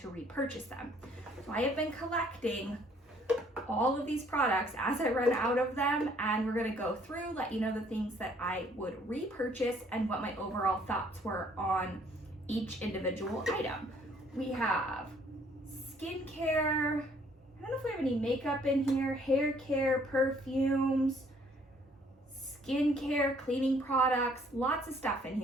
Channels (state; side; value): normal; both; correlation 0.62